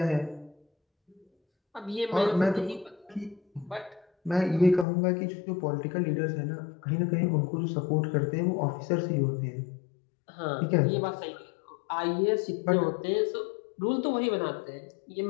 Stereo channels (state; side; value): drops out; right; at 4.9 s